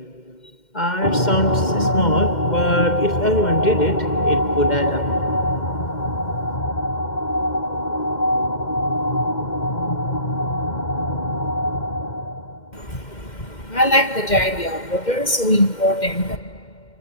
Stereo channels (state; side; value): late; right; 2.1 ms